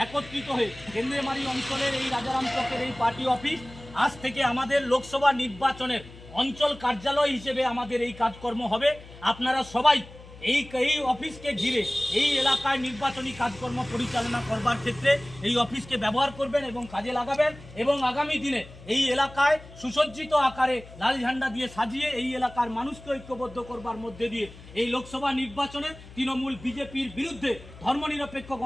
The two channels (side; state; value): left; noise; hum, 18 dB below the sound